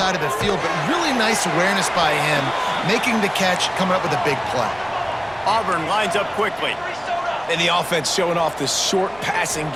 of the field, but really nice awareness by him, making the catch, coming up with a big play. Auburn lines up quickly. And the offense showing off the short passing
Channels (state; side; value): noise; right; rumble, 24 dB below the sound